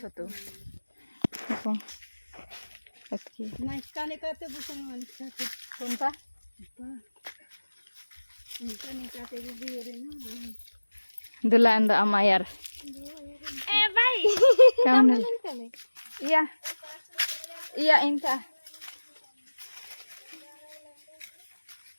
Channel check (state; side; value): inverted; both; correlation -1.00